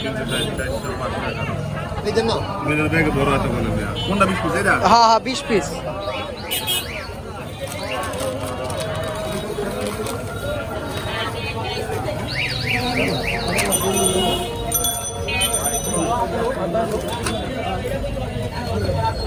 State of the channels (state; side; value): identical; both; correlation 1.00